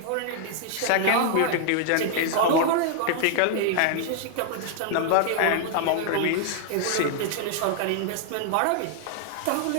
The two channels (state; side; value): different; both; correlation 0.00